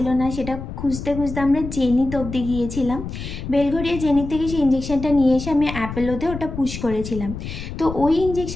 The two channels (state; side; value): noise; left; rumble, 8 dB below the sound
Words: না, সেটা খুঁজতে খুঁজতে আমরা জেনিত অবধি গিয়েছিলাম। বেলঘরিয়া জেনিত থেকে সেই ইনজেকশনটা নিয়ে এসে আমি অ্যাপেলোতে ওটা পুশ করেছিলাম। তো ওই